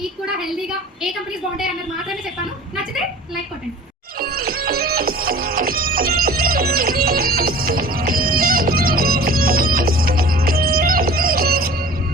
కూడా హెల్దీగా ఏ కంపెనీస్ బాగుంటాయి అన్నది మాత్రమే చెప్పాను. నచ్చితే లైక్ కొట్టండి.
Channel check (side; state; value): both; normal; correlation 0.43